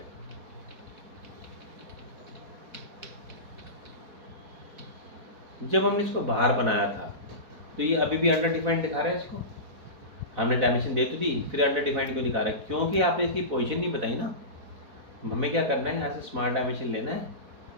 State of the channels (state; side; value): late; left; 4.5 ms